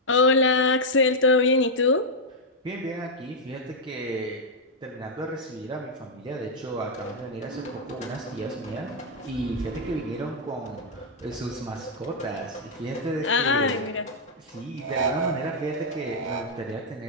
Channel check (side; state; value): both; normal; correlation -0.03